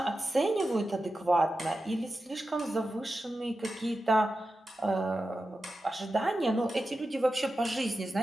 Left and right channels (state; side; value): normal; both; correlation 0.92